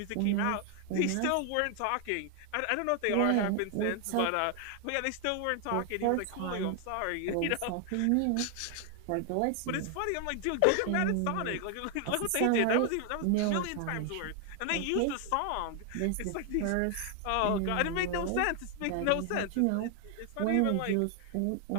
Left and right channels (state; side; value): different; both; correlation 0.00